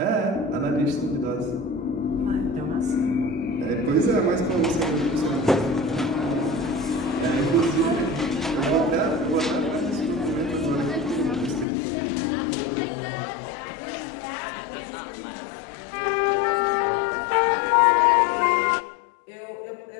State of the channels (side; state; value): right; drops out; at 11.7 s